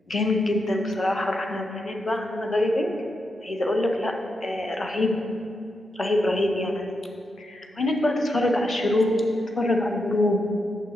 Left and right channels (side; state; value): both; normal; correlation 0.84